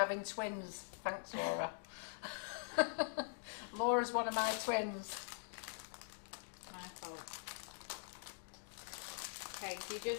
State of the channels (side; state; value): right; silent; digital silence